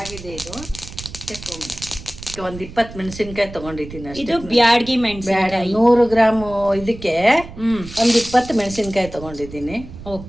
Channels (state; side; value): noise; right; rumble, 14 dB below the sound